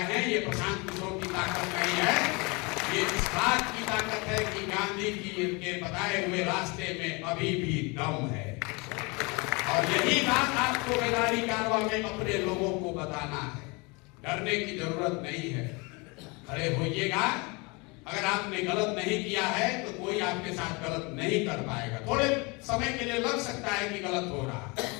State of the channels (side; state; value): right; quieter; 28.1 dB